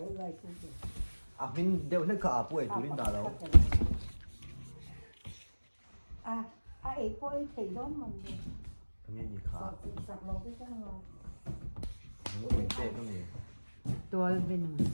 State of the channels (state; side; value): inverted; both; correlation -1.00